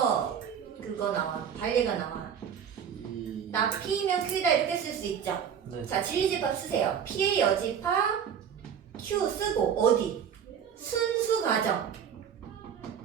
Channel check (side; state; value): left; quieter; 8.1 dB